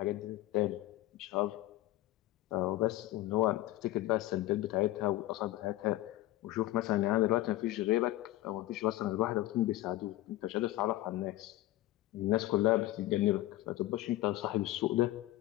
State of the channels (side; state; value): right; quieter; 16.3 dB